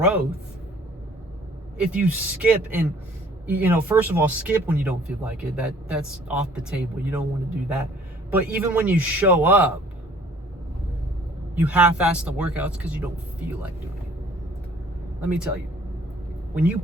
if you skip. And you know, first of all, skip when you don't feel like it. That's off the table. You don't want to do that. But even when you show up, you half-ass the workouts because you don't feel like doing it. Let me tell you, when you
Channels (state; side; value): normal; both; correlation 0.55